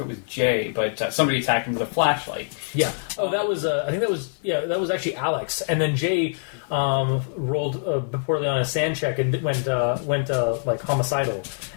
was Jay, but somebody attacked him with a flashlight. Yeah. Oh, that was. I think that was actually Alex, and then Jay rolled poorly on a sand check and went homicidal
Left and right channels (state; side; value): silent; right; digital silence